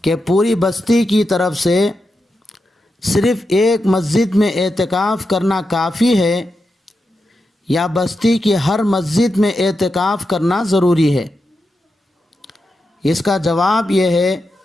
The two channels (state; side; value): normal; both; correlation 0.88